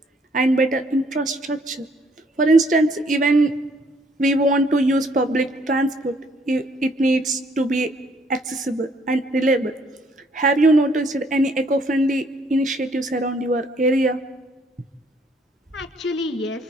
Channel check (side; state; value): both; normal; correlation 0.65